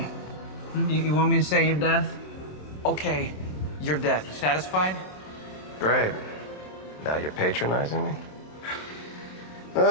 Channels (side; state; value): right; late; 27 ms